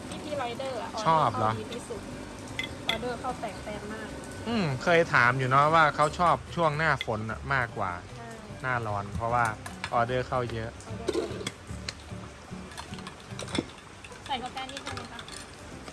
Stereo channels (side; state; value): both; identical; correlation 1.00